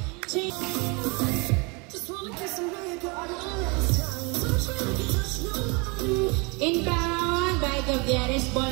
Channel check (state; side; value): quieter; left; 29.8 dB